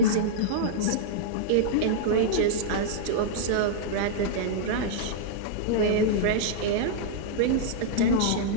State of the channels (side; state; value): both; different; correlation -0.02